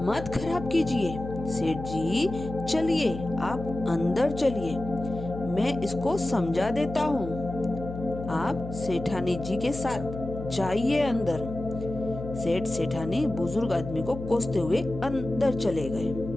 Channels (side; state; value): left; noise; hum, 9 dB below the sound